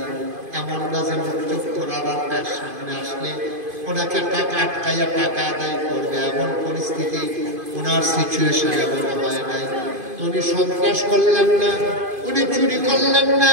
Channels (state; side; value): late; left; 2.5 ms